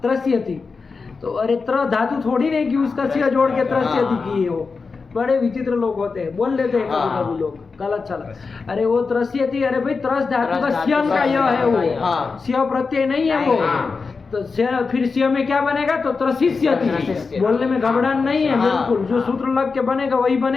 त्रस्यति। तो अरे त्र धातु थोड़ी नहीं कि उसका सिया जोड़ के त्रस्यति किए हो। बड़े विचित्र लोग होते हैं, बोल लेते हैं कभी हाँ। कभी लोग, गलत चला। अरे वो त्रस्यति, अरे भाई त्रस धातु का सियन का यह है वो। हाँ। सिया प्रत्यय नहीं है वो। हाँ। तो फिर सिया में क्या बनेगा? तो त्रसिष्यति। त्रसिष्यति। बोलने में घबराहट नहीं है। हाँ। बिल्कुल जो सूत्र लग के बनेगा वही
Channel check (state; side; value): quieter; right; 4.6 dB